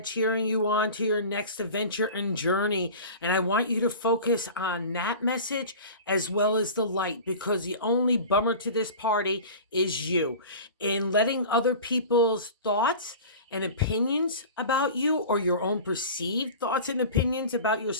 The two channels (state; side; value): inverted; both; correlation -0.36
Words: cheering you on to your next adventure and journey. And I want you to focus on that message as well as the light, because the only bummer to this party is you. In letting other people's thoughts and opinions about you, or your own perceived thoughts and opinions about